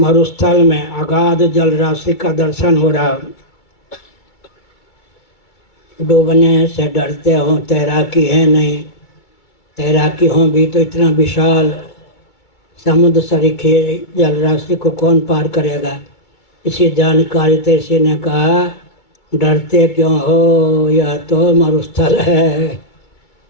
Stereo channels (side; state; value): right; late; 2.3 ms